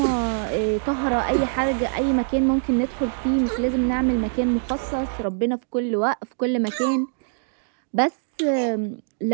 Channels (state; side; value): silent; left; digital silence